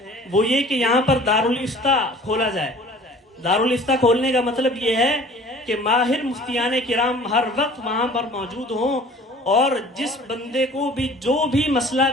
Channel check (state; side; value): normal; both; correlation 0.47